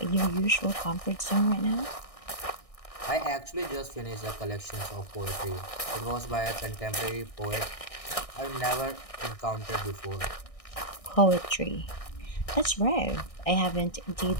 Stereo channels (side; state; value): right; late; 1.6 ms